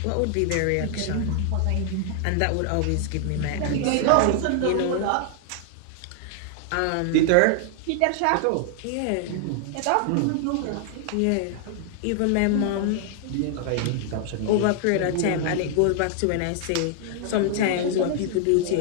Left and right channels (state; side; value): different; both; correlation 0.00